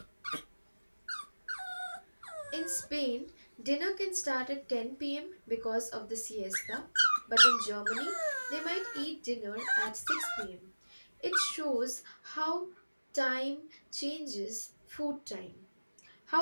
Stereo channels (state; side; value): inverted; both; correlation -1.00